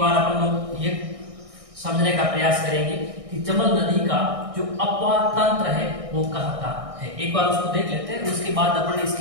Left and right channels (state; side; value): late; left; 1.6 ms